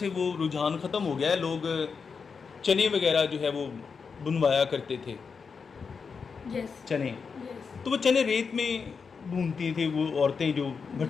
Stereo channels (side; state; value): right; quieter; 5.5 dB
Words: वो रुझान ख़त्म हो गया है, लोग चने वगैरह जो है वो बुनवाया करते थे। चने, तो वो चने रेत में भूनती थी वो औरतें जो